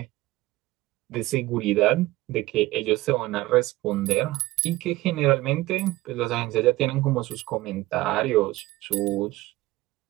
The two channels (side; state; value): left; quieter; 18.5 dB